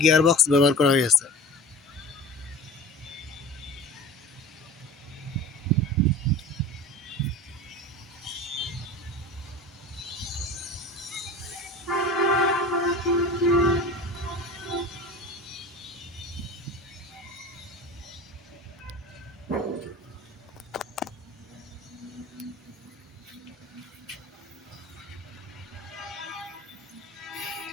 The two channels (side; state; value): both; normal; correlation 0.36